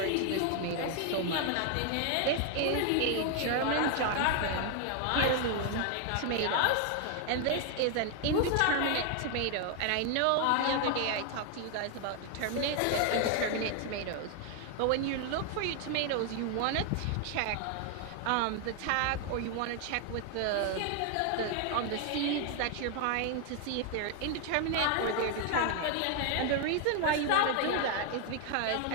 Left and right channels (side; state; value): both; different; correlation 0.00